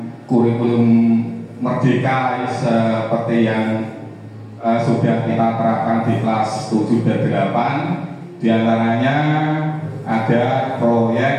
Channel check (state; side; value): identical; both; correlation 1.00